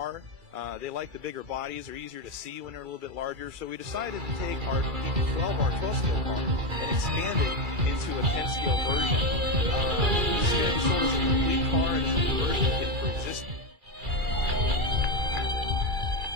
They like the bigger bodies. They're easier to see when they're a little bit larger. So we decided to take our 12 scale car and expand it into a 10 scale version. So it's a complete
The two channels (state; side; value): late; left; 2.3 ms